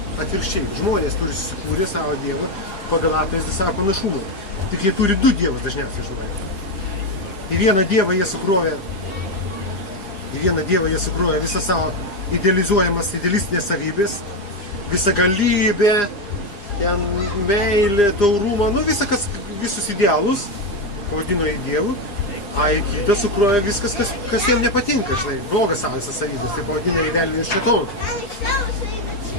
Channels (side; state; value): right; late; 4.9 ms